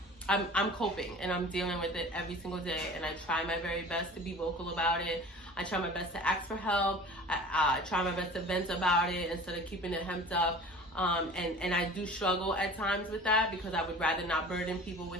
I'm coping and I'm dealing with it every single day, and I try my very best to be vocal about it. I try my best to ask for help. I try my best to vent about it instead of keeping it hemmed up. And I do struggle at times with that, because I would rather not burden people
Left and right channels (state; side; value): normal; both; correlation 0.42